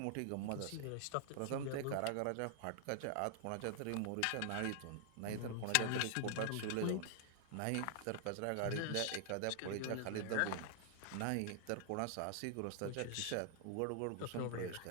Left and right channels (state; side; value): different; both; correlation 0.00